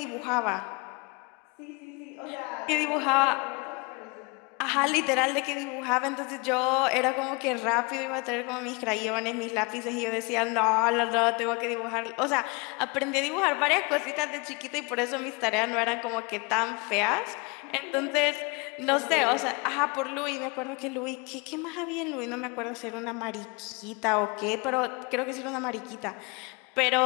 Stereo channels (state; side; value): quieter; right; 29.3 dB